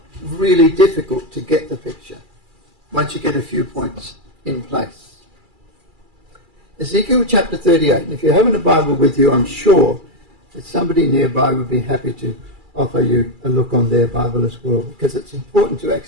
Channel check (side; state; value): left; late; 2.3 ms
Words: really difficult to get the picture once you get a few points in place. Ezekiel chapter 38, and if you're having a Bible with you, I'm sure that somebody nearby would be happy to offer you a look on their Bible as well, because it's important to